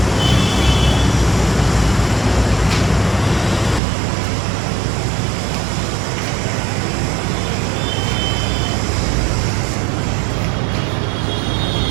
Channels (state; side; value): drops out; left; at 3.8 s